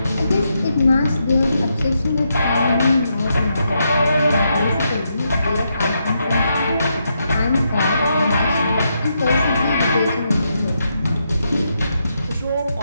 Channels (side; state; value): both; inverted; correlation -0.81